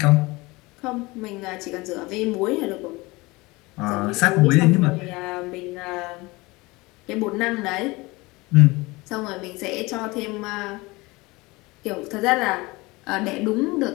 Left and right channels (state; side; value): quieter; right; 22.9 dB